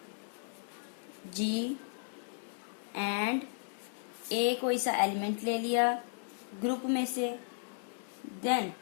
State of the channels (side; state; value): right; silent; 54 dB below the other